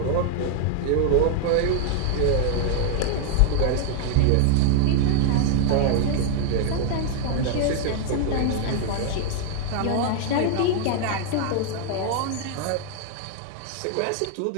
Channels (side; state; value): both; different; correlation 0.00